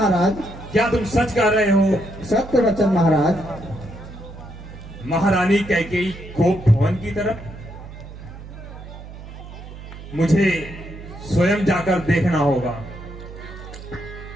क्या तुम सच कह रहे हो? सत्य वचन महाराज। महारानी कैकेयी कोप भवन की तरफ? मुझे स्वयं जाकर देखना होगा।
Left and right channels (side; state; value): right; noise; hum, 14 dB below the sound